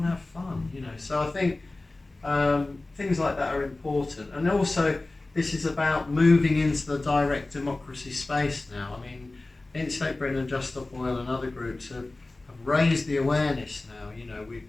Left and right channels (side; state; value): right; quieter; 3.0 dB